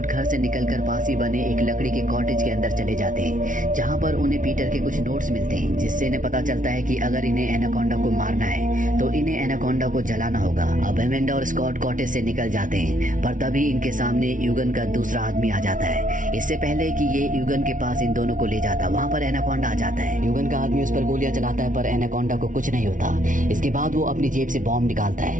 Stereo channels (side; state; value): left; late; 0.38 ms